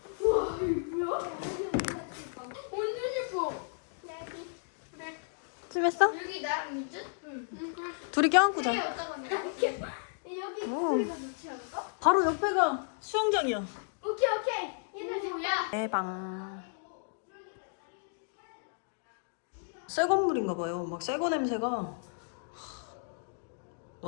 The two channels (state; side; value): silent; right; digital silence